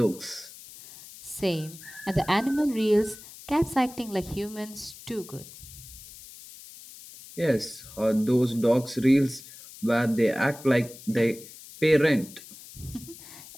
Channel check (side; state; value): left; noise; hiss, 17 dB below the sound